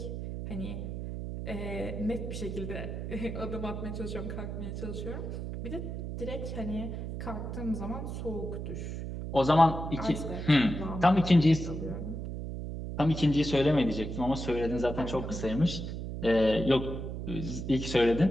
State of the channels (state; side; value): noise; right; hum, 6 dB below the sound